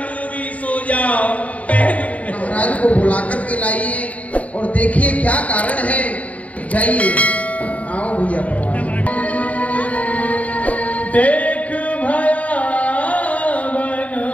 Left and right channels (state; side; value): late; right; 0.069 ms